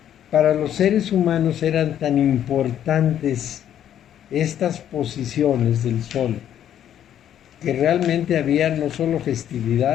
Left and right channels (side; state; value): right; quieter; 10.4 dB